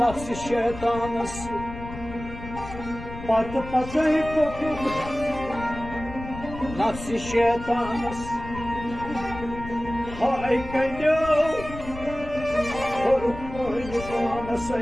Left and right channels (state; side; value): noise; left; rumble, 11 dB below the sound